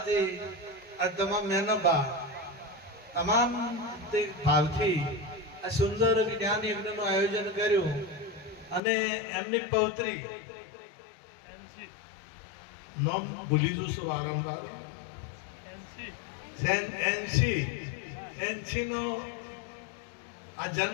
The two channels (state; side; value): drops out; right; at 8.8 s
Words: આ તમામ મેનબા તમામ ભાવથી આ સુંદર જ્ઞાન યજ્ઞનું આયોજન કર્યું અને એમની પૌત્રી નામ ભૂલી જઉં છું વારંવાર, એનસી નો આ